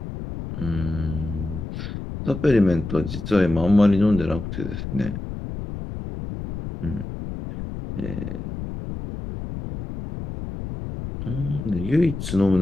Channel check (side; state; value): left; noise; rumble, 8 dB below the sound